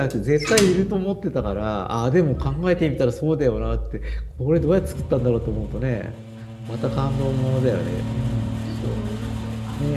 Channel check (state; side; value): identical; both; correlation 1.00